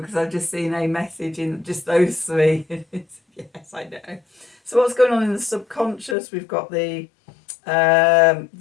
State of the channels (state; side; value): drops out; right; at 6.2 s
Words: I've just seen a message in just those 3. Yes, I know. So what's going on in the subconscious? We've got the